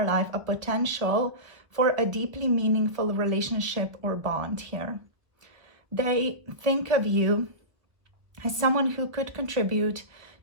life a potential for a deeply meaningful relationship or bond here. They think of you as someone who could contribute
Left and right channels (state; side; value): late; left; 1.1 ms